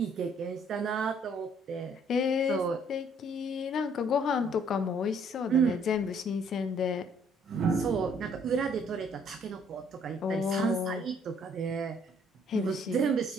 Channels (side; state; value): both; normal; correlation 0.63